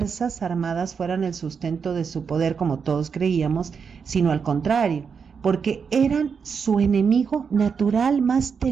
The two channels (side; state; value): left; quieter; 6.1 dB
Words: Armadas fueran el sustento de su poder como todos creíamos, sino al contrario, porque eran su enemigo natural más